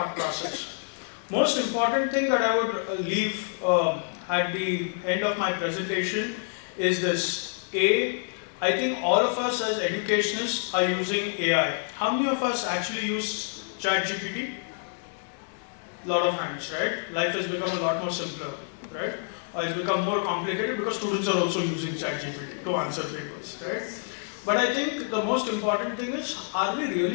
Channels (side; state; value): right; silent; digital silence